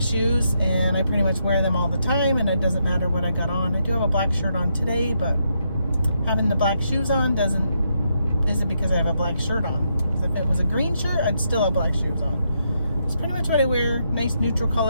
shoes, and I pretty much wear them all the time, and it doesn't matter what I got on. I do have a black shirt on today, but having the black shoes on isn't because I have a black shirt on. Because if it was a green shirt, I'd still have black shoes on. It's pretty much what I wear. Nice neutral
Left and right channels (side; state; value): both; inverted; correlation -0.79